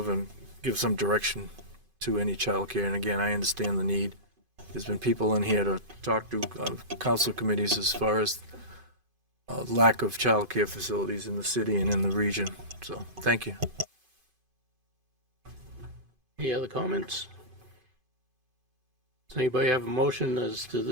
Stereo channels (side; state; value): left; late; 2.5 ms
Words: and give some direction to any childcare. And again, I understand the need. There's been people in here to talk to council committees as far as lack of childcare facilities in the city and in the region. So, thank you. Any other comments? Does anybody have a motion as to